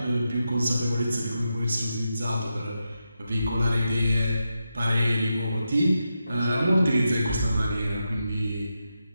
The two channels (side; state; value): both; inverted; correlation -0.87